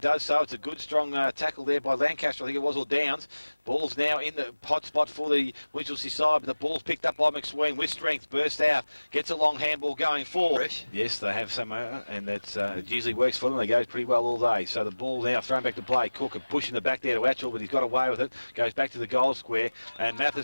so. It's a good, strong tackle there by Lancaster, I think it was, or Downs. Ball's now in the hot spot for the Winchelsea side, but the ball's picked up by McSween with strength. Bursts out. Gets a long handball going forward. Yes, they have some, and that's it usually works for them. They go pretty well all day. So the ball now thrown back to play. Cook pushing it back there to Atchell, but he's got away with it. Goes back to the goal square, and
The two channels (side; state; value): both; inverted; correlation -1.00